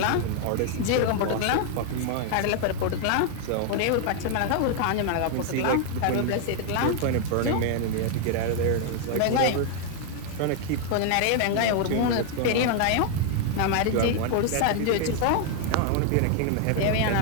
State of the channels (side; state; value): both; different; correlation 0.00